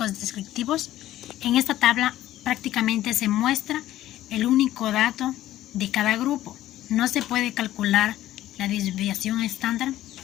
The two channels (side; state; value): right; quieter; 14.0 dB